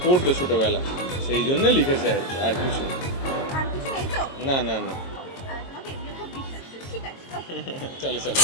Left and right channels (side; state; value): right; late; 22 ms